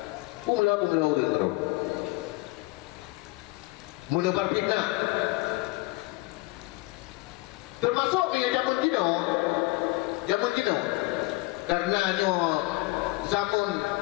Mula terus menebar fitnah, termasuk zaman Cina, karena zaman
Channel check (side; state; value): right; quieter; 22.7 dB